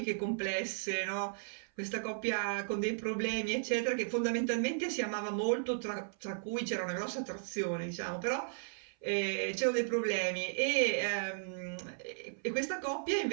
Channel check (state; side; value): silent; left; 54 dB below the other